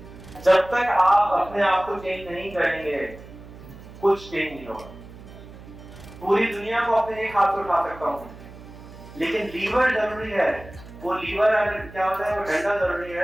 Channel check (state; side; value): noise; right; hum, 17 dB below the sound